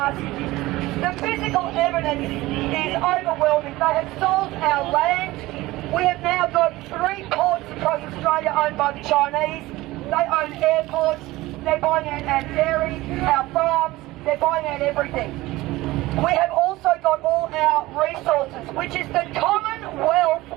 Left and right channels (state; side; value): quieter; left; 18.7 dB